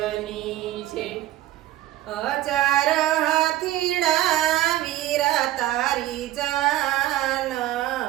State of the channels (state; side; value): quieter; left; 14.9 dB